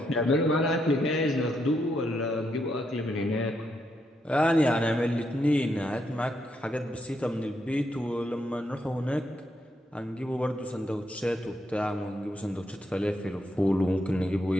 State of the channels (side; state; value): both; normal; correlation 0.79